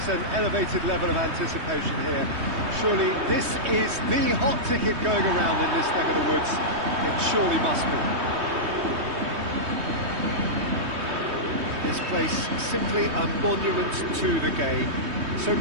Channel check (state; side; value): late; left; 3.2 ms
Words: an elevated level of anticipation here. Surely this is the hot ticket going around in this neck of the woods. It surely must be. This place simply a monument to the game. So